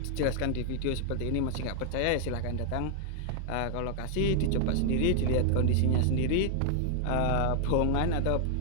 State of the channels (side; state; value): both; different; correlation 0.00